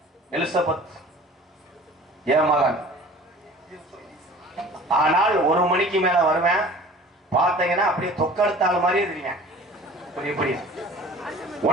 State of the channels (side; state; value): both; normal; correlation 0.44